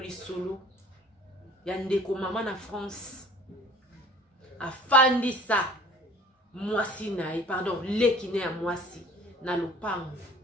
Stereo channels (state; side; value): normal; both; correlation 0.49